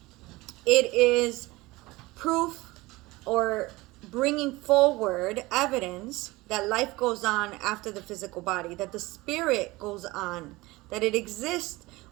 it is proof or bringing forward evidence that life goes on after the physical body, that the spirit goes on, that it exists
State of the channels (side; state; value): left; quieter; 20.8 dB